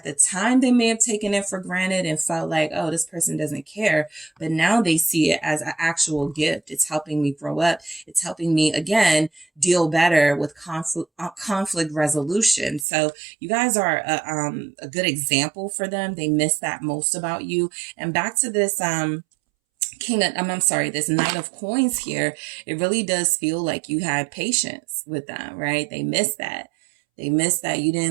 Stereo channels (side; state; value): left; drops out; at 12.9 s